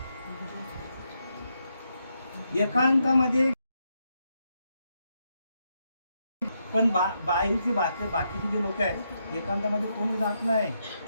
एकांतामध्ये पण बाकीचे जे लोक आहेत एकांतामध्ये कोणी जात नाही,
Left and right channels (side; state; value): both; inverted; correlation -0.81